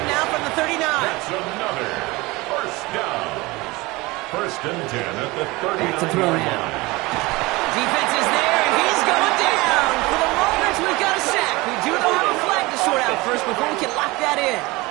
now from the 39. That's another first down. First and 10 at the 39. Back to throw now. Defense is there, and he's going down. For the moment, we've got a sack. We do know how to flag to sort out first before we can lock that in.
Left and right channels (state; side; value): quieter; left; 22.3 dB